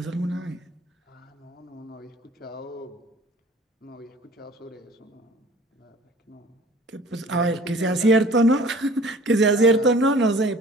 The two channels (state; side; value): normal; both; correlation 0.49